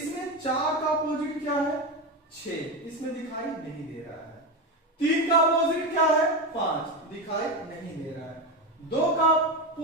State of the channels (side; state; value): both; normal; correlation 0.16